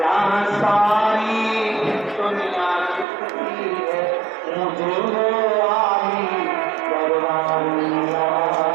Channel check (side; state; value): left; drops out; at 3.1 s